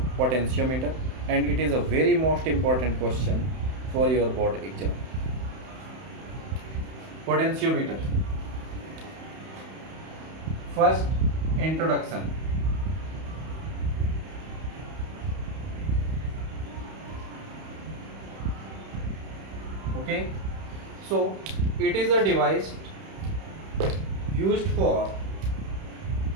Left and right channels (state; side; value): late; left; 31 ms